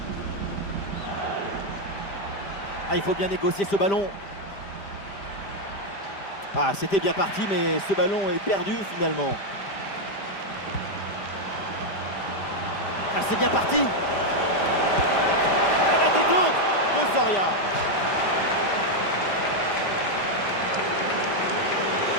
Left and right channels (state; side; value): late; right; 5.0 ms